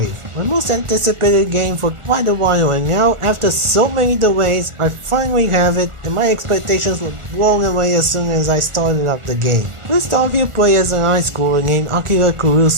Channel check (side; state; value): left; late; 1.4 ms